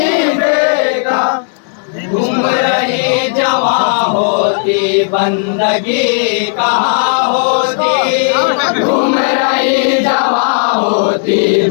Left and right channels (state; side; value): silent; right; 65 dB below the other